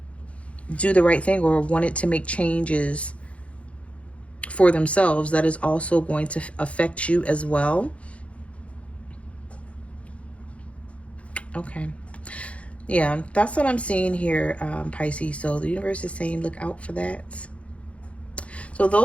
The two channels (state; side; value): late; right; 0.063 ms